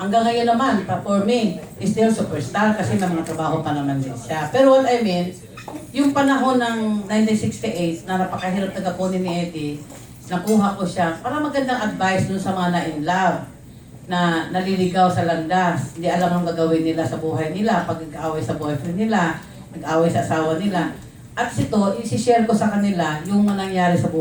ngayon naman, for me, is still superstar kasi may mga trabaho pa naman din siya. Pero what I mean, yung panahon ng 1968 na napakahirap tagakunin ni Eddie, nakuha ko siya para magandang advice dun sa mga na-in love na naliligaw sa landas. Hindi alam ang gagawin nila sa buhay nila pag nag-aaway sa boyfriend nila, nag-aaway sa asawa nila. At ito, isi-share ko sa kanila yung nangyari sa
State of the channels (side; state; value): both; identical; correlation 1.00